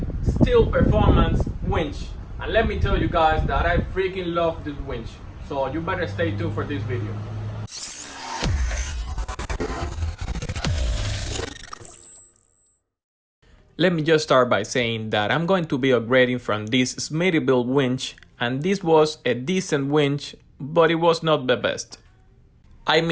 steel performance winch. And let me tell you guys that I freaking love this winch. So you better stay tuned for this video. Let me just start by saying that I'm going to be upgrading from this Smittyville winch, and this was a decent winch, but it was not the best. I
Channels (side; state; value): both; identical; correlation 1.00